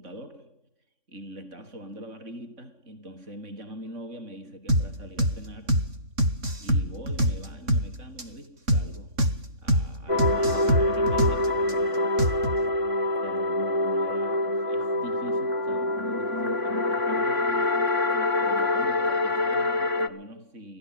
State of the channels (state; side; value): late; left; 3.6 ms